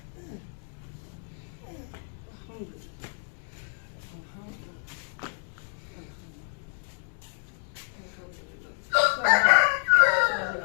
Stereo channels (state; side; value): silent; right; digital silence